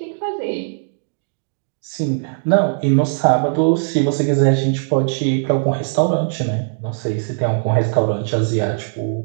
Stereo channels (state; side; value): silent; left; digital silence